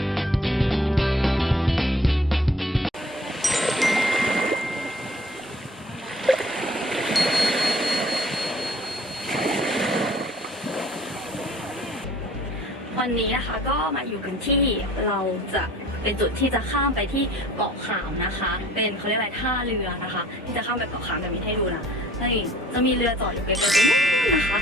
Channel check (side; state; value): both; normal; correlation 0.53